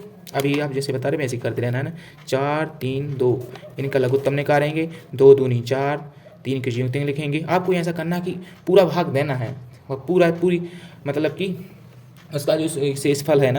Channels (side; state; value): both; identical; correlation 1.00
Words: अभी आप जैसे बता रहे वैसे ही करते रहना, है ना। 4 3 2, इनका लघुत्तम निकालेंगे, 2 दूनी 4, 3 की संयुक्तियाँ लिखेंगे। आपको ऐसा करना कि पूरा भाग देना है, और पूरी मतलब कि उसका जो शेषफल है